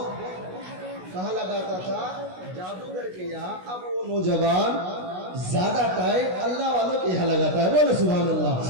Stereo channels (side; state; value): left; late; 16 ms